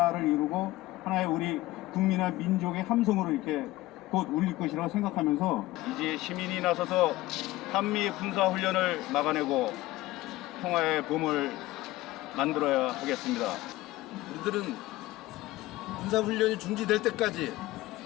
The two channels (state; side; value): quieter; right; 17.7 dB